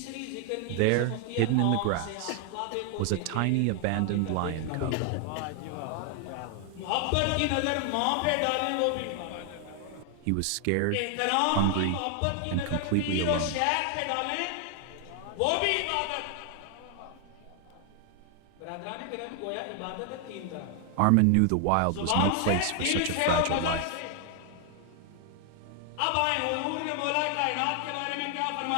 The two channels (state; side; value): different; both; correlation 0.00